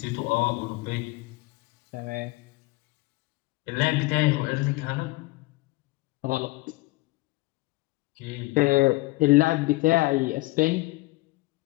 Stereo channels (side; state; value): right; quieter; 21.8 dB